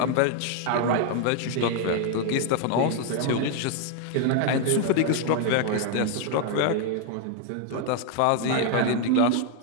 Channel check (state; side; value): different; both; correlation 0.00